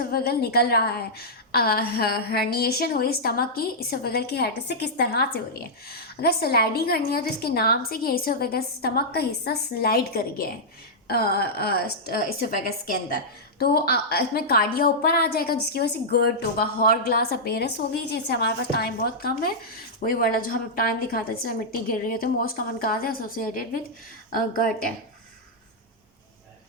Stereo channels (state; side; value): normal; both; correlation -0.09